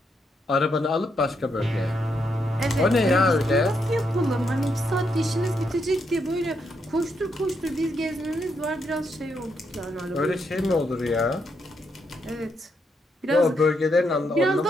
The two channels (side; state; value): both; normal; correlation 0.79